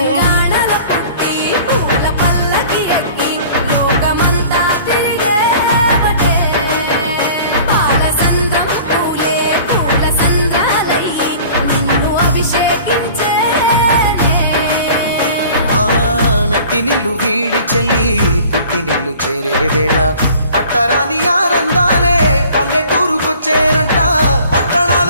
పుట్టి పూల పల్లకి ఎక్కి లోకమంతా తిరిగేవటే. పాలసంద్రం పూలే పూల సంద్రాలయ్యి నిన్ను అభిషేకించేనే. మెట్టినిల్లు వీడి చెల్లి పుట్టినిల్లు చేరే వేళ అట్టరాని ఆనందాలే పల్లెటూరుకొచ్చేనంట.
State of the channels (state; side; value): inverted; both; correlation -0.47